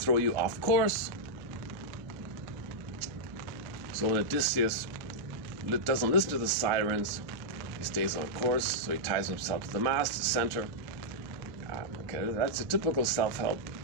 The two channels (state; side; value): noise; right; hum, 20 dB below the sound